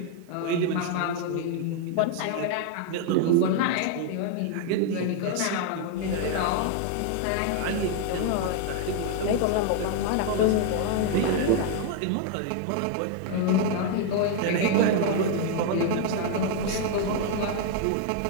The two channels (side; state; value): both; different; correlation 0.00